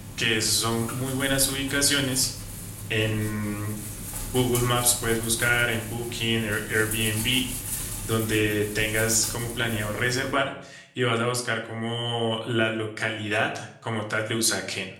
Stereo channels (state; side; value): identical; both; correlation 1.00